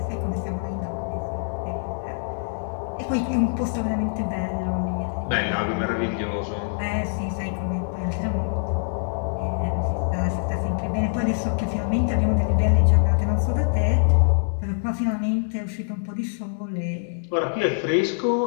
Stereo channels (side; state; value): right; silent; digital silence